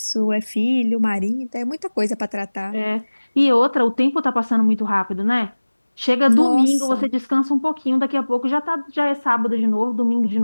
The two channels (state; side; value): inverted; both; correlation -1.00